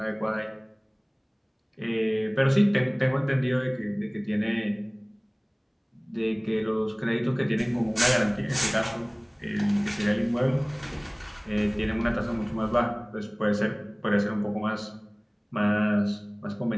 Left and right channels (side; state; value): both; identical; correlation 1.00